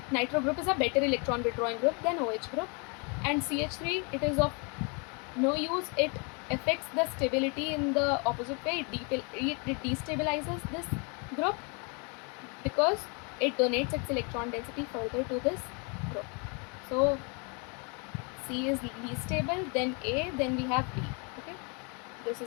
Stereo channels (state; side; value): quieter; right; 33.9 dB